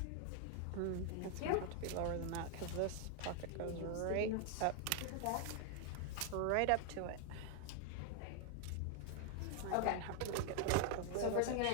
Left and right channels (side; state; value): both; different; correlation 0.00